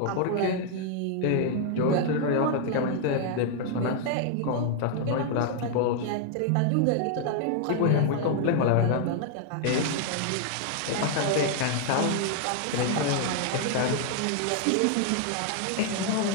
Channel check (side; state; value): both; different; correlation 0.00